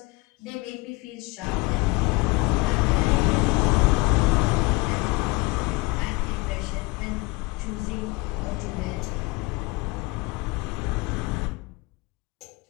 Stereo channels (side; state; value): right; quieter; 23.9 dB